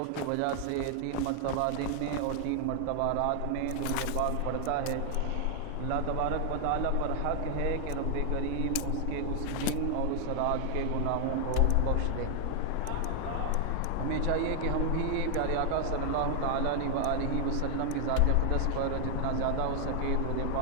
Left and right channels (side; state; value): both; different; correlation 0.00